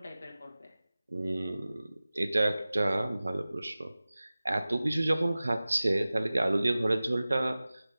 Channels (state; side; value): inverted; both; correlation -0.97